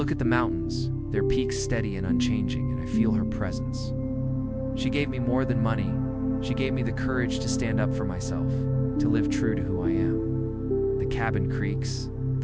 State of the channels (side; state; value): both; identical; correlation 1.00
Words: at the mountains, their peaks steady and unchanging, and I feel her presence. She gave me more than money. She gave me the courage to stand up for myself, to live true to who I am. The cabin creaks,